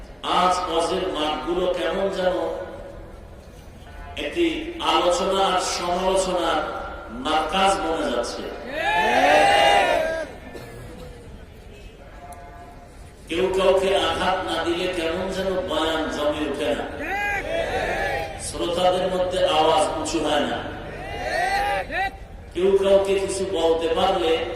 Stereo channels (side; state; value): both; identical; correlation 1.00